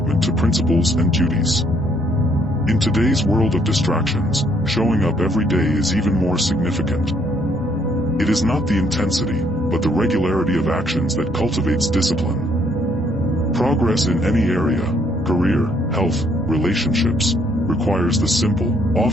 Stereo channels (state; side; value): normal; both; correlation 0.68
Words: to principles and duties. In today's world of distractions, showing up every day is even more significant. It is not the intensity, but the regularity of actions that cultivates discipline. Progress in any area, career, health, relationships, requires the simple,